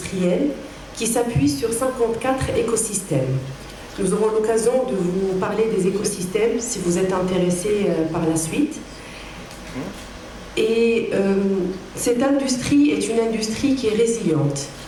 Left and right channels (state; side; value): identical; both; correlation 1.00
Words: qui s'appuient sur 54 écosystèmes. Nous aurons l'occasion de vous parler des écosystèmes si vous êtes intéressés par la suite. Et cette industrie est une industrie qui est résiliente,